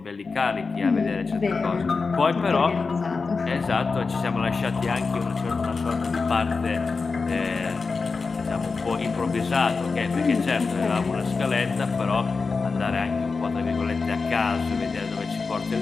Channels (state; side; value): quieter; right; 4.5 dB